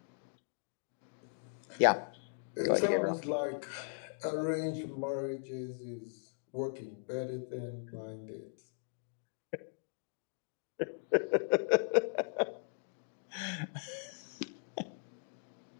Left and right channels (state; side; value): silent; right; digital silence